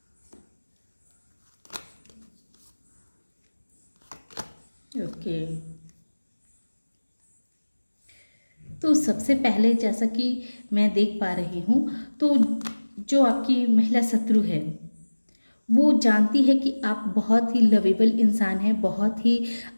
ओके, तो सबसे पहले जैसा कि मैं देख पा रही हूँ, तो जो आपकी महिला शत्रु है वो जानती है कि आप बहुत ही लवेबल इंसान हैं, बहुत ही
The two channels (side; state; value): both; inverted; correlation -1.00